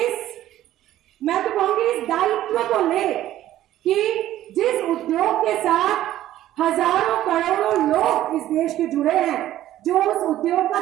मैं तो कहूंगी इस दायित्व को ले कि जिस उद्योग के साथ हजारों करोड़ों लोग इस देश के जुड़े हैं, जो उस उद्योग का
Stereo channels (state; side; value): quieter; left; 13.5 dB